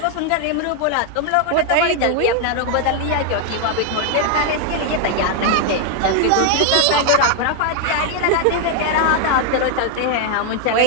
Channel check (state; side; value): different; both; correlation 0.00